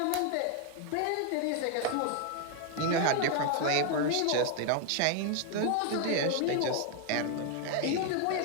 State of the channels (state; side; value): different; both; correlation 0.00